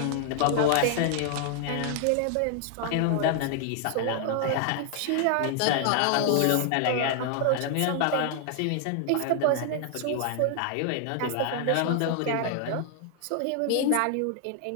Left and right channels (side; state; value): both; different; correlation 0.00